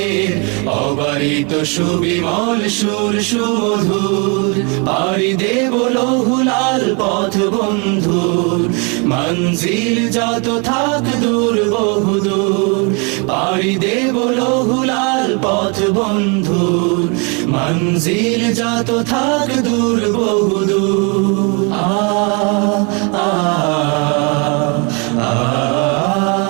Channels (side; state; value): left; quieter; 33.4 dB